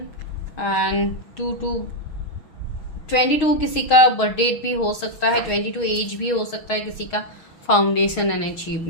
एंड 22 किसी का बर्थ डेट भी हो सकता है, 22 एज भी हो सकता है किसी का। फाउंडेशन एंड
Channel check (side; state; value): right; late; 6.3 ms